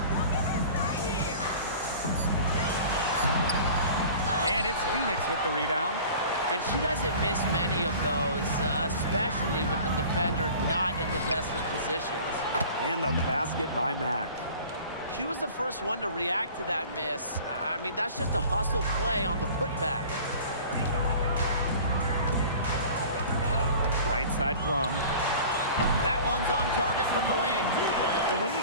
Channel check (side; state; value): both; inverted; correlation -0.43